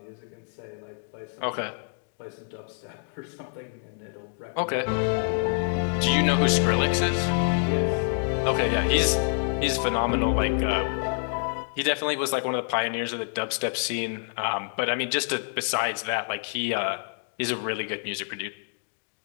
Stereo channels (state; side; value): silent; right; digital silence